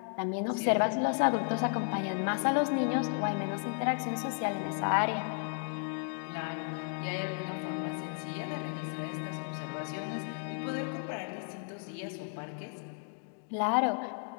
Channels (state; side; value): silent; right; 55 dB below the other